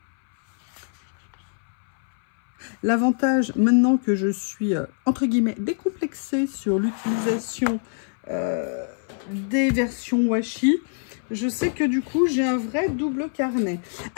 L'avantage, maintenant que je suis, entre guillemets, décomplexée sur l'utilisation des versions washi, je sais que du coup, j'ai un vrai double carnet.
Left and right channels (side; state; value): right; silent; 62 dB below the other